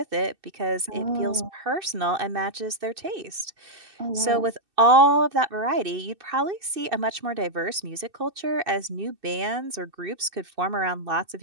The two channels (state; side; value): late; left; 2.6 ms